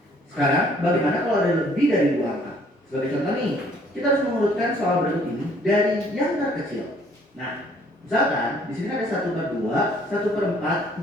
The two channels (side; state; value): both; normal; correlation 0.61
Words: Sekarang bagaimana kalau ada lebih dari 2 angka? Sebagai contoh nih, kita harus mengurutkan soal berikut ini dari yang terkecil. Nah, misalkan di sini ada 1/2, 1/4,